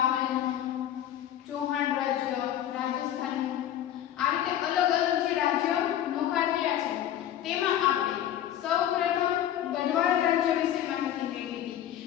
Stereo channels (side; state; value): right; quieter; 11.4 dB